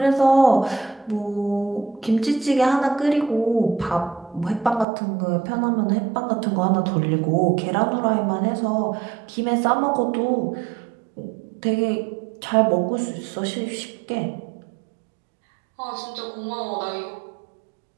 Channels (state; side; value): drops out; left; at 4.9 s